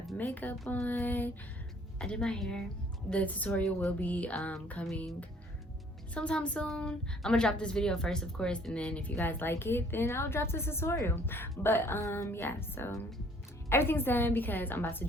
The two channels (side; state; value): both; normal; correlation 0.59